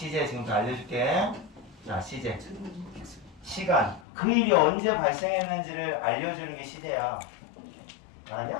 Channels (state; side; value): drops out; right; at 4.0 s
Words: 지금부터 알려줄게. 자, 시제. 시간. 그 일이 언제 발생했는지를 알려주는 게 시제야.